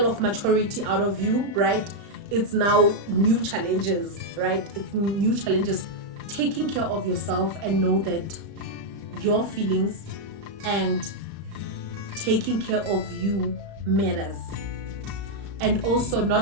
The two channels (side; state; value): left; late; 35 ms